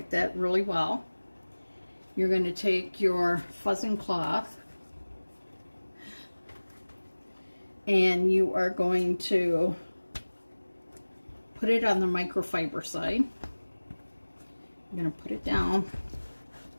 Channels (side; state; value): both; inverted; correlation -1.00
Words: that really well. You're going to take your fuzzing cloth and you are going to put it on the microfiber side. I'm going to put it down,